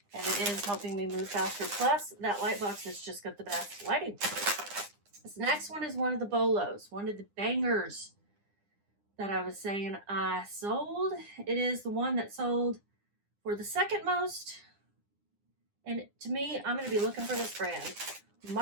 and it is helping me move faster. Plus that Lightbox has just got the best lighting. This next one is one of the bolos, one of the bangers that I was saying I sold. It is the one that sold for the second most. And to me, I'm going to be looking for this brand,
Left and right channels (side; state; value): left; late; 9.9 ms